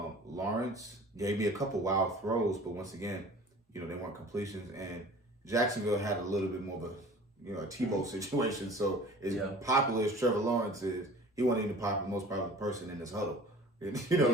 gave me a couple wild throws, but once again, they weren't completions. And Jacksonville had a little bit more of a Tebow situation. So as popular as Trevor Lawrence is, he wasn't even the most popular person in this huddle.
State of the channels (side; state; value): both; normal; correlation 0.44